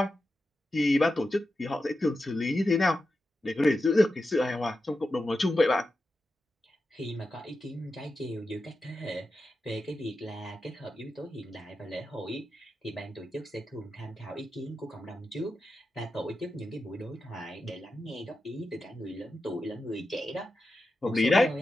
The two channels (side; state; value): both; normal; correlation 0.90